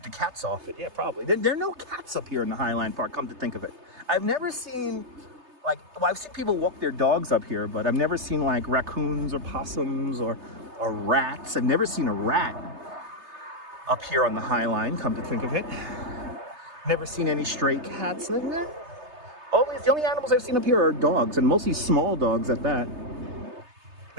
the cats off it. Yeah, probably. There are no cats up here in the Highline Park, come to think of it. I've never seen, like, well, I've seen people walk their dogs up here, but I've never seen like raccoons or possums or rats. I've never seen a rat up here on the Highline, come to think of it. Never seen any stray cats like that. The only animals I've seen up here are dogs, and mostly small dogs at that.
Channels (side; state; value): left; late; 3.3 ms